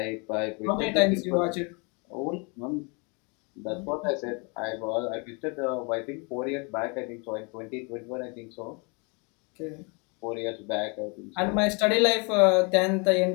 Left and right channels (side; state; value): right; quieter; 32.2 dB